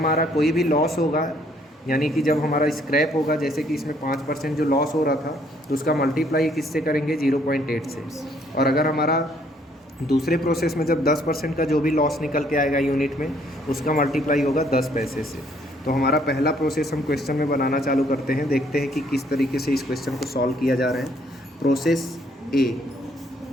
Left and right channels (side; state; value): both; normal; correlation 0.65